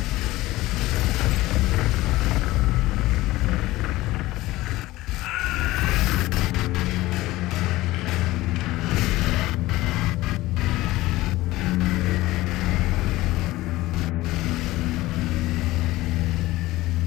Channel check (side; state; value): right; quieter; 18.0 dB